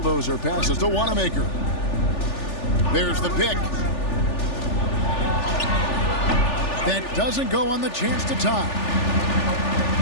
passes to Wanamaker. There's the pick. That doesn't go on the chance to tie.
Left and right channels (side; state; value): right; late; 3.4 ms